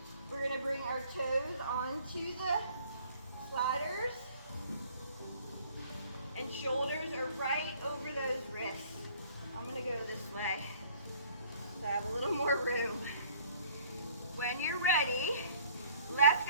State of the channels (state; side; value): inverted; both; correlation -0.56